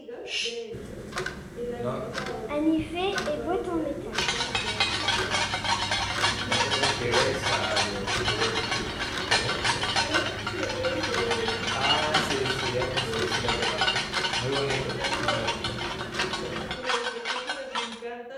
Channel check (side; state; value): both; identical; correlation 1.00